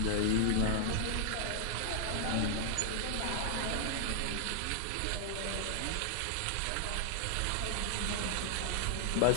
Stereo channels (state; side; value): different; both; correlation 0.00